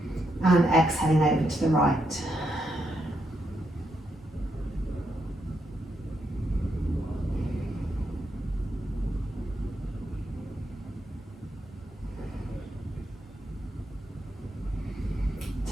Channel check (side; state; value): both; normal; correlation 0.80